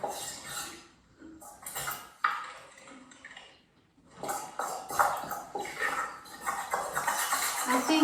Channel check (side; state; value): both; identical; correlation 1.00